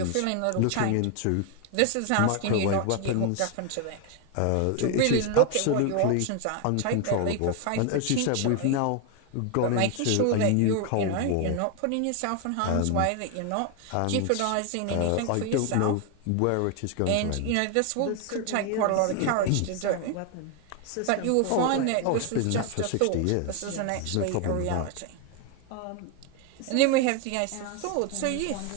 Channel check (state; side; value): different; both; correlation 0.01